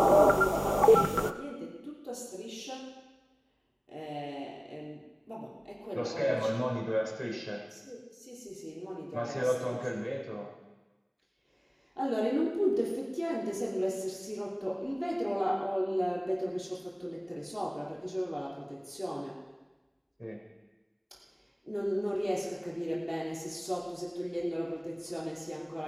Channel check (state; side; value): identical; both; correlation 1.00